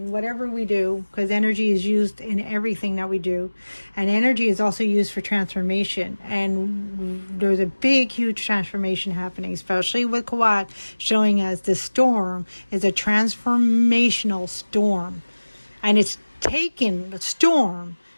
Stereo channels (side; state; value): both; inverted; correlation -1.00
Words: whatever we do, because energy is used in everything that we do. And energy is also used for transformation. And there's a big, huge transformation happening, especially with Kawat showing us the storm is a transformational storm. And it's taken the storm